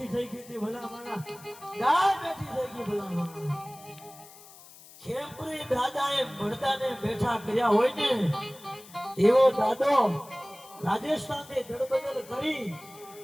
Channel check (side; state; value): left; noise; hiss, 20 dB below the sound